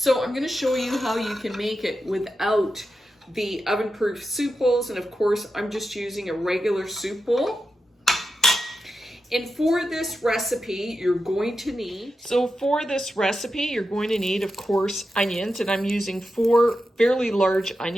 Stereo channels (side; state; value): both; normal; correlation 0.89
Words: I'm going to show you how you can make it without the oven-proof soup bowls, and of course I'm just using a regular soup bowl. And for this recipe, you're going to need, of course, onions, and I'm using 4 fairly large